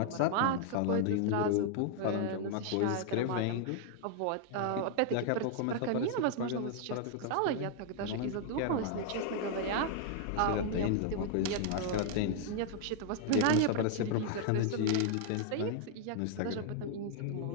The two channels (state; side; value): different; both; correlation 0.00